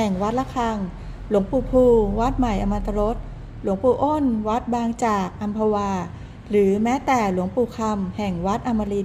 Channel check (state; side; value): identical; both; correlation 1.00